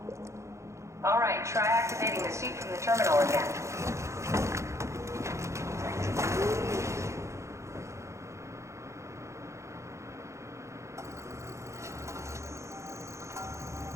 Alright, try activating the suit from the terminal again.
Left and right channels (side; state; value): left; late; 0.14 ms